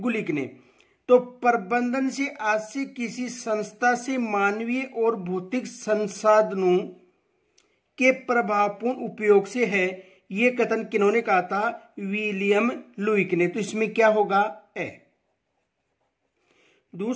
ने। तो प्रबंधन से आज से किसी संस्था से मानवीय और भौतिक संसाधनों के प्रभावपूर्ण उपयोग से है, ये कथन किन्होंने कहा था? विलियम लुईक ने। तो इसमें क्या होगा? ए।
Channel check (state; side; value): identical; both; correlation 1.00